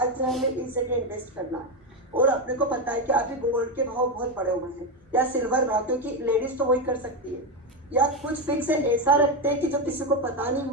हमें इस जगह इन्वेस्ट करना है और अपने को पता है कि अभी गोल्ड के भाव बहुत बढ़े हुए हैं या सिल्वर भाव, क्योंकि लेडीज तो वही कर सकती है, या कुछ फिक्स ऐसा रखते हैं कि जो किसी को पता नहीं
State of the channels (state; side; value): normal; both; correlation 0.10